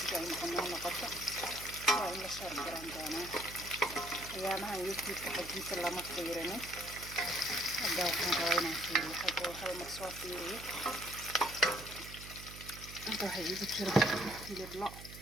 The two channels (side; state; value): right; noise; hum, 13 dB below the sound